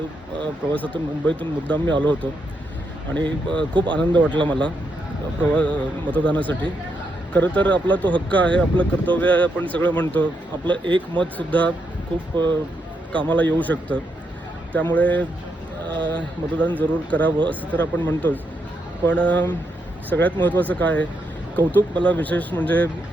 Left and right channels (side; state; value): both; normal; correlation 0.80